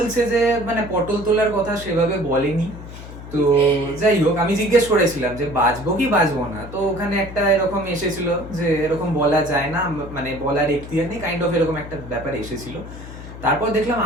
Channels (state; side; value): noise; left; hum, 13 dB below the sound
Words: যে মানে পটল তোলার কথা সেভাবে বলেনি। তো যাই হোক, আমি জিজ্ঞেস করেছিলাম যে বাজবো কি বাজবো না, তো ওখানে একটা এরকম এসেছিল যে এরকম বলা যায় না, মানে বলার এখতিয়ার নেই, কাইন্ড অফ এরকম একটা ব্যাপার এসেছিল। তারপর দেখলাম